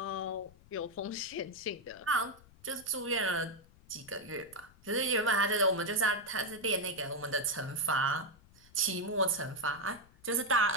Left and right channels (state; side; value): noise; left; rumble, 25 dB below the sound